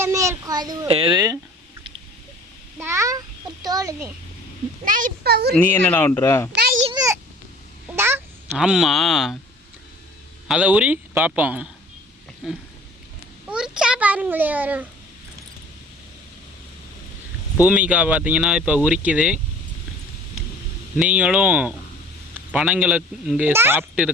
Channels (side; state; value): both; normal; correlation 0.48